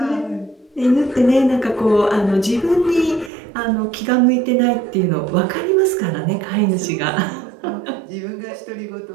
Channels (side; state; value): left; drops out; at 3.3 s